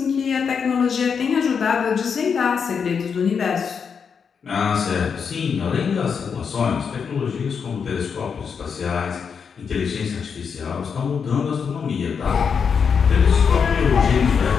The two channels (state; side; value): quieter; right; 6.4 dB